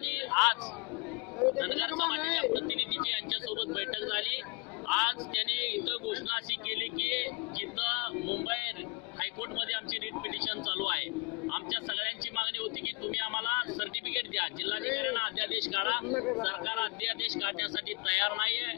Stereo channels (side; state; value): right; quieter; 27.2 dB